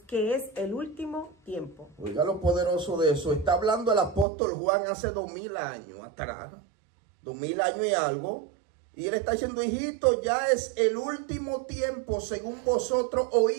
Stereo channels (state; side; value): drops out; left; at 4.2 s